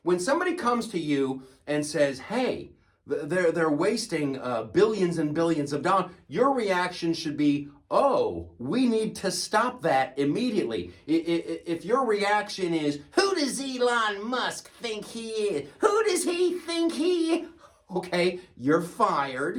When somebody comes to you and says, hey, they're wasting billions and billions of dollars, your reaction should be, oh, we need to stop that immediately. If your reaction is, who does Elon Musk think he is? Who does he think he is? Okay, you're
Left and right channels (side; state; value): both; identical; correlation 1.00